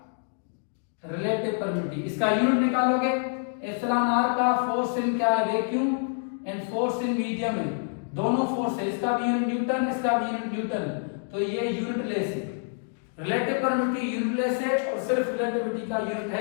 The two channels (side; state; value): right; silent; digital silence